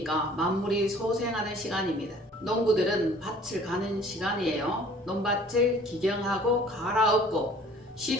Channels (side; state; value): both; normal; correlation 0.52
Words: 만물이 소생하는 시간입니다. 농부들은 밭을 가는 시간이에요. 논밭을 기경하고 갈아엎고